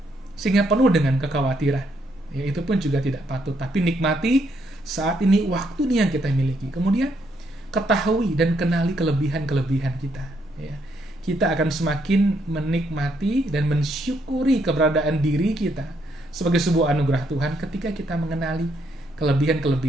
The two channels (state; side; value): normal; both; correlation 0.74